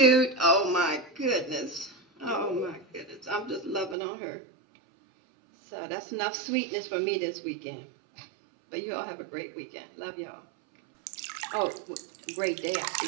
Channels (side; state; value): left; drops out; at 4.0 s